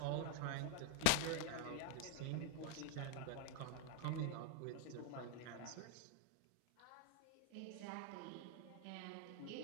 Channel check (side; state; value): both; different; correlation 0.01